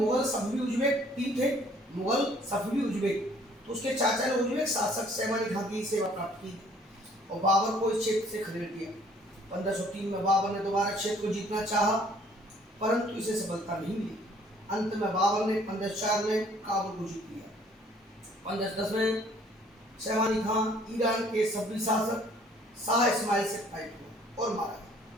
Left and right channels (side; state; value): both; normal; correlation 0.58